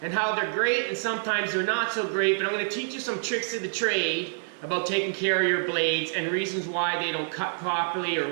and how they're great and sometimes they're not so great, but I'm going to teach you some tricks of the trade about taking care of your blades and reasons why they don't cut properly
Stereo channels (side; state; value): left; silent; 60 dB below the other